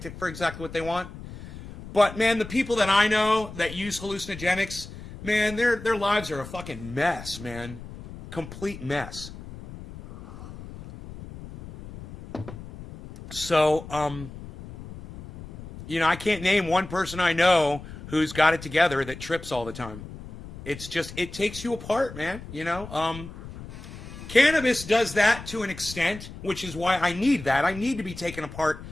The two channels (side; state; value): left; noise; rumble, 13 dB below the sound